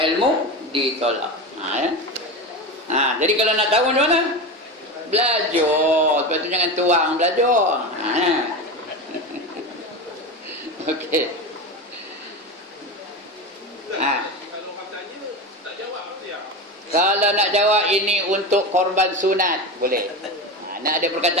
ilmu ditolak. Ya. Jadi kalau nak tahu macam mana? Belajar. Lepas tu jangan tuang belajar. Okey. Kalau katanya tak jawab apa dia? Kalau nak jawab ini untuk korban sunat, boleh. Nak ada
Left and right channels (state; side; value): normal; both; correlation 0.23